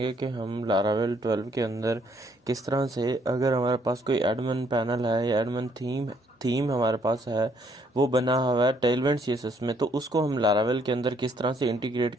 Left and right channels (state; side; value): normal; both; correlation 0.67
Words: कि हम लारावेल 12 के अंदर किस तरह से, अगर हमारे पास कोई एडमिन पैनल है या एडमिन थीम हमारे पास है, वो बना हुआ है टेलविंड सीएसएस में, तो उसको हम लारावेल के अंदर किस तरह से इंटीग्रेट